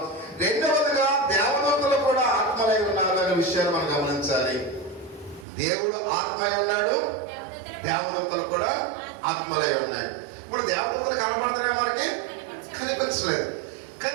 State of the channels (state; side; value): drops out; left; at 5.5 s